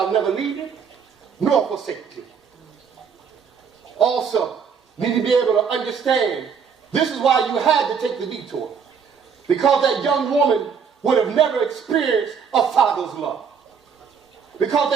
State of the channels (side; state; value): left; quieter; 6.6 dB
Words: never leave you, nor forsake you. Also, you need to be able to understand, this is why you had to take the detour. Because that young woman would have never experienced a father's love. Because